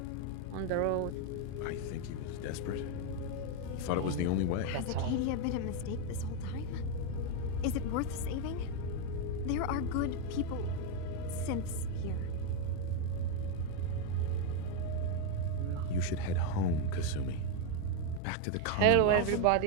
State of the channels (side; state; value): both; different; correlation 0.02